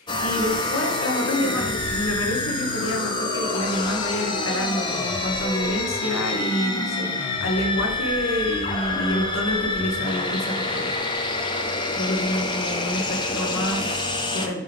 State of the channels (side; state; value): both; normal; correlation 0.16